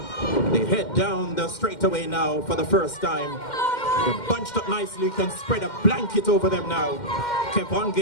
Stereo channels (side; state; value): right; late; 2.1 ms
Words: They head down the straightaway now for the first time. They're bunched up nicely. You can spread a blanket over them now.